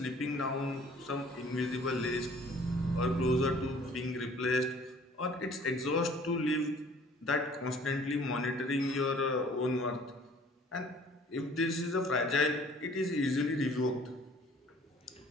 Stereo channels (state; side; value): normal; both; correlation 0.53